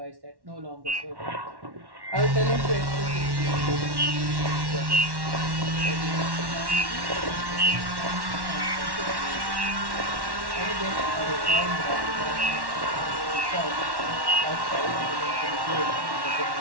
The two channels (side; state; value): left; late; 1.1 ms